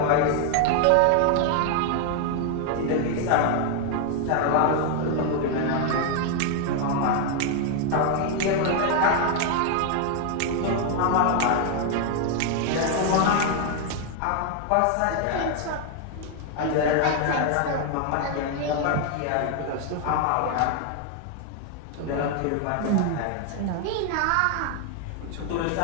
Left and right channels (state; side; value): different; both; correlation 0.00